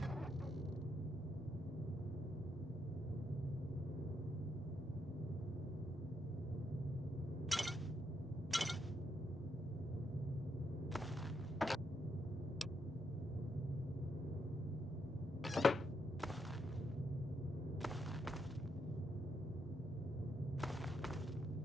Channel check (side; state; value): both; normal; correlation 0.79